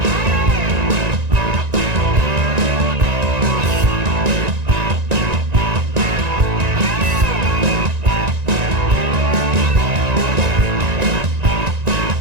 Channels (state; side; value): late; left; 1.9 ms